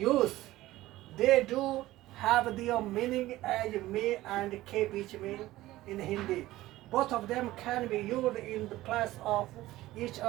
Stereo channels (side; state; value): left; quieter; 16.6 dB